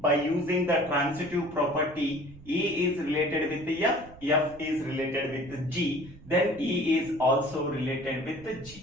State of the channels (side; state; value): right; noise; rumble, 20 dB below the sound